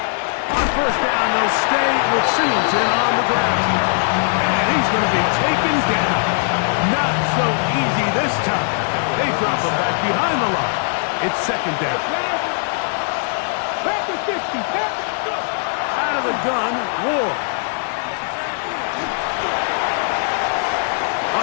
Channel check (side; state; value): right; silent; 66 dB below the other